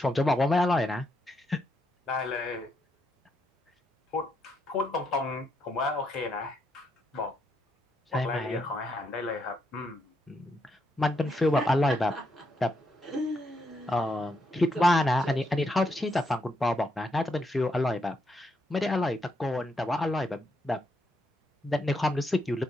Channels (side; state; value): both; normal; correlation 0.79